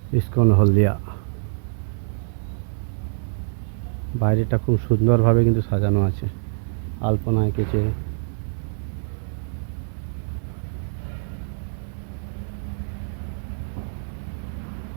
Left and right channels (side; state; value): left; silent; digital silence